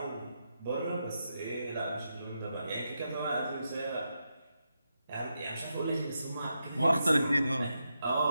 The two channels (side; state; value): both; inverted; correlation -0.85